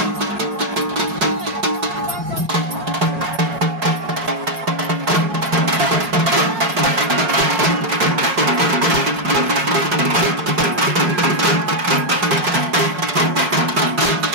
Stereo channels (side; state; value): left; late; 5.5 ms